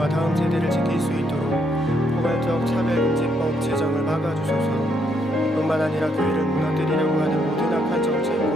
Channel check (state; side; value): normal; both; correlation 0.74